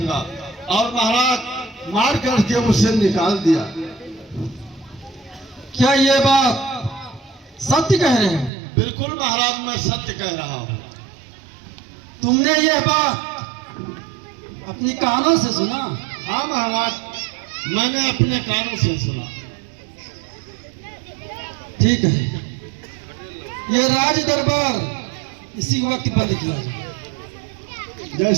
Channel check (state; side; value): drops out; left; at 8.5 s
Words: और महाराज मार करके उसे निकाल दिया। क्या ये बात सत्य कह रहे हैं? बिल्कुल महाराज, मैं सत्य कह रहा हूं। तुमने यह बात अपनी कानों से सुना? हाँ महाराज, मैंने अपने कानों से सुना। ठीक है, ये राज दरबार इसी वक्त बंद किया जाए।